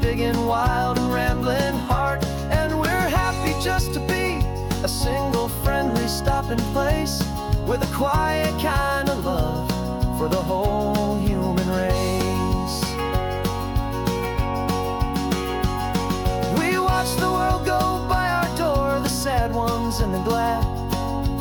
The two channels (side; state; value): both; identical; correlation 1.00